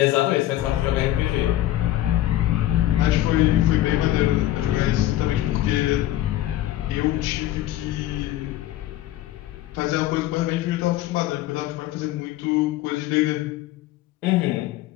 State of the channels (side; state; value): right; quieter; 14.3 dB